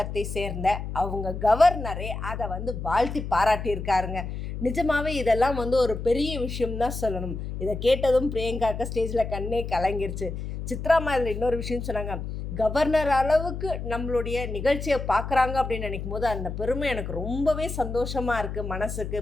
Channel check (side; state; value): left; noise; hum, 6 dB below the sound